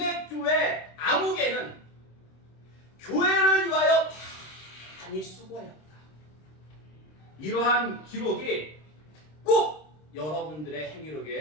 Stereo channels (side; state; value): right; late; 26 ms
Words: 암흑에는 교회를 위하여 많이 수고하였다. 이러한 기록이 꼭 여러분들의